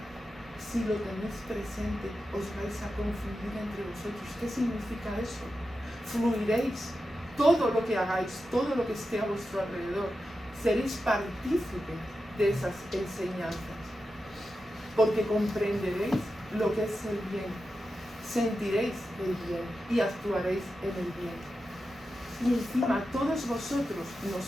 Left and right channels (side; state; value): both; normal; correlation 0.90